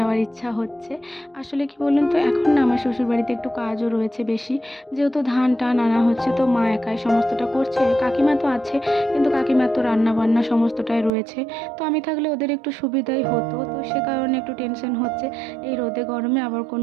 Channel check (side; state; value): left; drops out; at 11.1 s